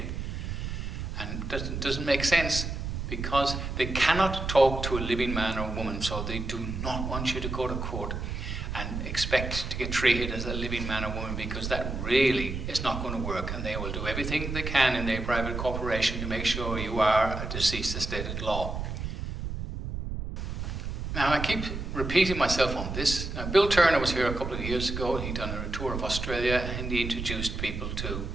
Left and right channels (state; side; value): noise; right; rumble, 5 dB below the sound